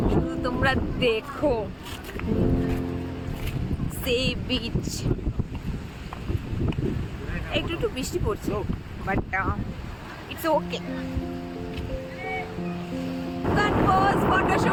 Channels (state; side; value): identical; both; correlation 1.00